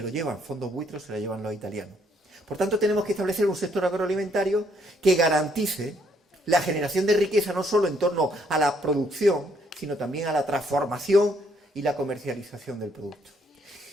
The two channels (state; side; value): normal; both; correlation 0.69